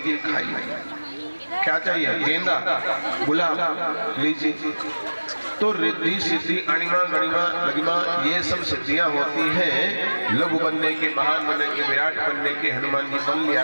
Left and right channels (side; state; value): both; inverted; correlation -1.00